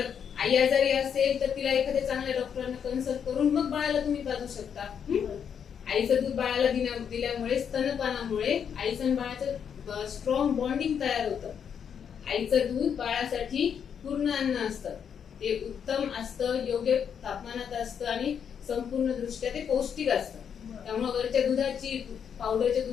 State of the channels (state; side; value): quieter; right; 7.7 dB